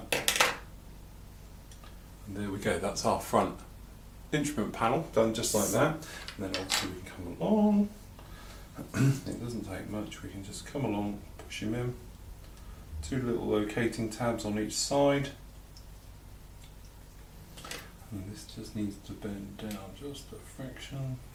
and there we go, that's our front instrument panel done just like that. And then obviously we can come along, it doesn't take much, we can just come along, push him in, two little locating tabs on each side, and this just needs to bend down just a fraction,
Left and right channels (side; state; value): both; identical; correlation 1.00